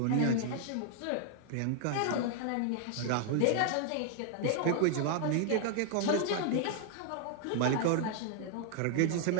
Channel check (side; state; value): both; different; correlation 0.00